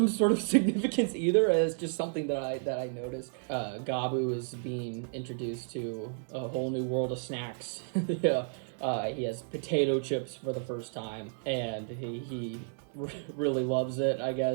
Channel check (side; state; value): left; silent; digital silence